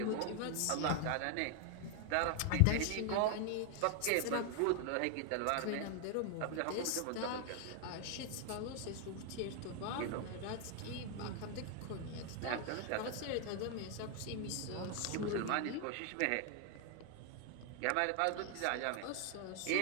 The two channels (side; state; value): both; different; correlation 0.00